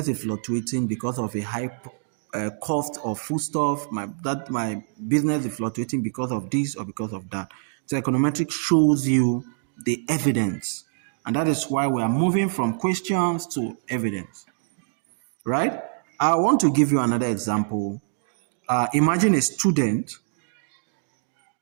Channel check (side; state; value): left; silent; digital silence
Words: is fluctuating because of a high cost of foodstuff. My business is fluctuating because of this or because of that. So econometrics shows you the evidence, and that is why we are moving from questions to evidence. Right? I want to give you another example. Imagine a student.